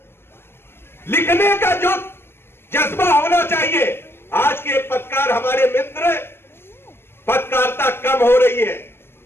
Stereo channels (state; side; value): late; right; 0.11 ms